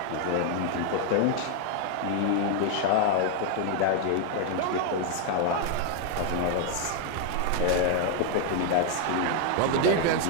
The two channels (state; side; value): different; both; correlation 0.01